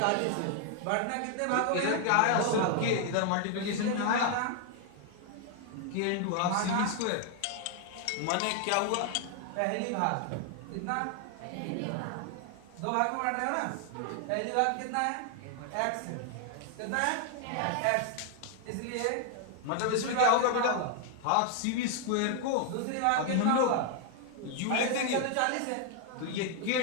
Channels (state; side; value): different; both; correlation 0.00